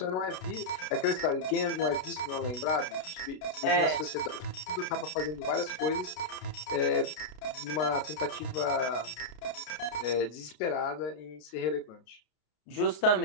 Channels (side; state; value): right; late; 33 ms